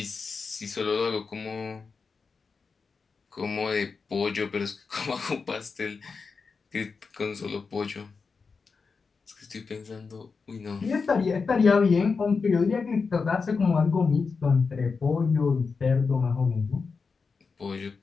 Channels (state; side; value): quieter; right; 4.9 dB